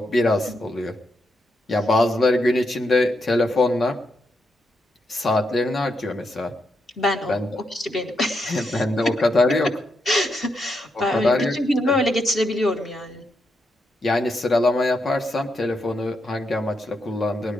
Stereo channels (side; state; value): both; normal; correlation 0.82